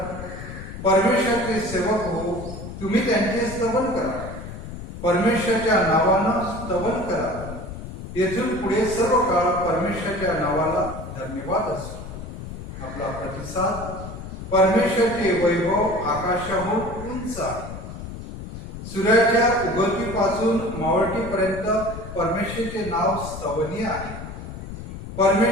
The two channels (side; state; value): left; noise; rumble, 10 dB below the sound